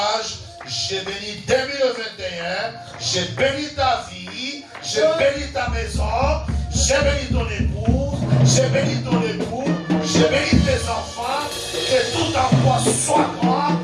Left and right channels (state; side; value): identical; both; correlation 1.00